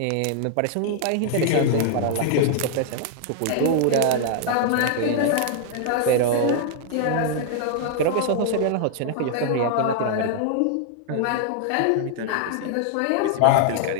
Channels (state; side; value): different; both; correlation -0.01